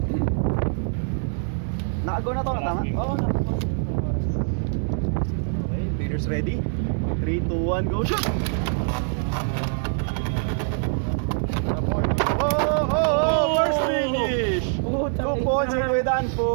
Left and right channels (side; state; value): left; silent; digital silence